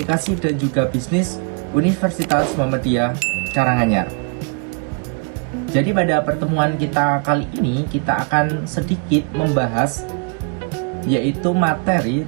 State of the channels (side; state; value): left; quieter; 35.2 dB